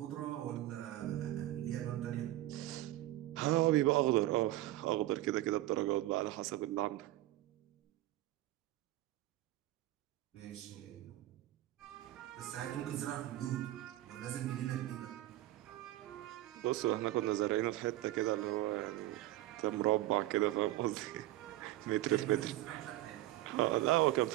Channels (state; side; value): quieter; left; 15.8 dB